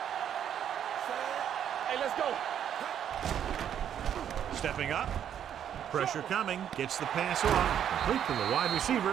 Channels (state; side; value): quieter; left; 9.4 dB